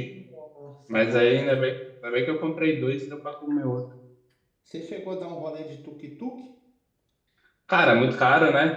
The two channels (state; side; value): identical; both; correlation 1.00